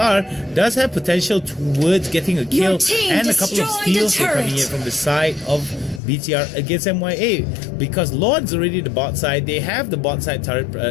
does have potential towards getting a kill team and a couple of destroyed steals the here coming in turret. from the side of BTR against MYA, because Lord's already the bot side. They have the bot side turret.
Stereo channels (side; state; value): right; drops out; at 6.0 s